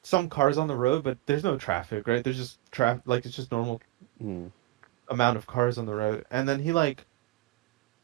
some cars on the road, but there's no traffic, right? There's just traffic, like it's just normal Hmm. amount of cars on the road, and then he like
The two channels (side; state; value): left; quieter; 18.1 dB